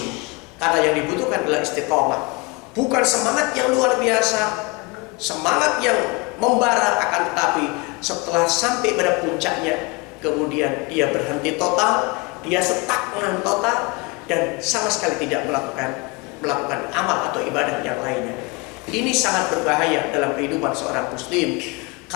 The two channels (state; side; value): quieter; right; 27.3 dB